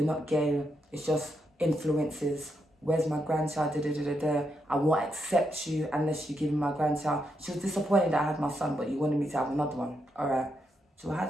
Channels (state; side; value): normal; both; correlation 0.81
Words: not gay, it's just influences. Where's my grandchild? Da, da, da, da, da. I won't accept you unless you give me my grandchild. She was disappointed that I had my son, but you wanted me to have another one. All right, so I